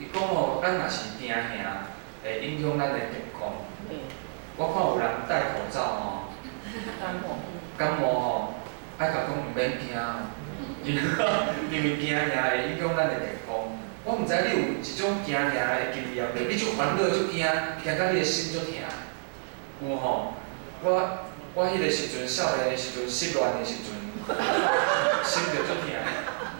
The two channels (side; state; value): left; silent; digital silence